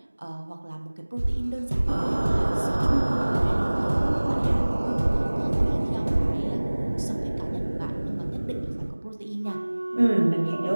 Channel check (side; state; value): both; inverted; correlation -1.00